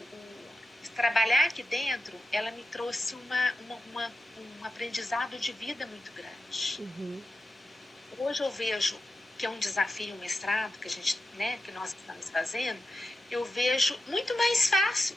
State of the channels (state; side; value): normal; both; correlation 0.91